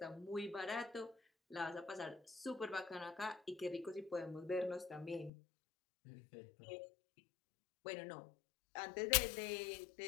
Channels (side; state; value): right; drops out; at 5.3 s